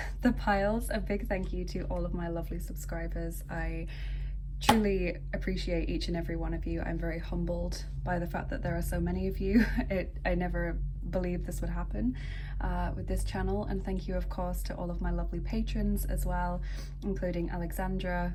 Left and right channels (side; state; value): both; identical; correlation 1.00